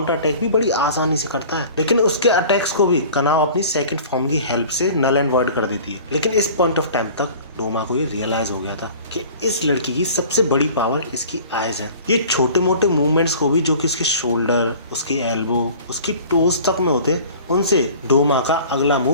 अटैक भी बड़ी आसानी से करता है। लेकिन उसके अटैक्स को भी कनाव अपनी सेकंड फॉर्म की हेल्प से नल एंड वॉइड कर देती है। लेकिन इस पॉइंट ऑफ टाइम तक डोमा को ये रियलाइज हो गया था कि इस लड़की की सबसे बड़ी पावर इसकी आईज है। ये छोटे मोटे मूवमेंट्स को भी जो कि उसके शोल्डर, उसके एल्बो, उसकी टोज तक में होते, उनसे डोमा का अगला मूव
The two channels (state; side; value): inverted; both; correlation -0.45